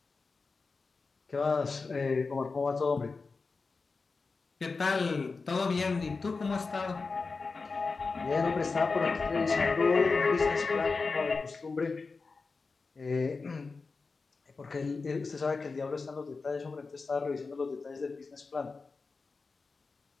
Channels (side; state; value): right; quieter; 4.3 dB